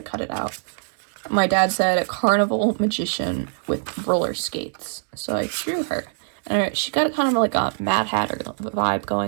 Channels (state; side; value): silent; left; digital silence